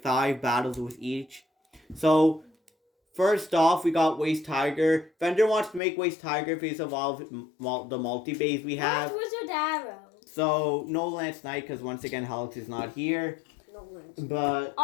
5 battles with each. So, first off, we got Weiss Tiger. Fender wants to make Weiss Tiger face of all the multi-base we have. Where's Wizard Arrow? So, no Lance Knight, because once again, Helix is not here. No Lance. But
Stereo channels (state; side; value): drops out; right; at 5.8 s